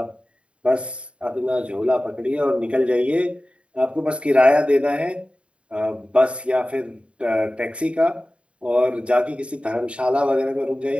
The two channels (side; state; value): left; late; 0.059 ms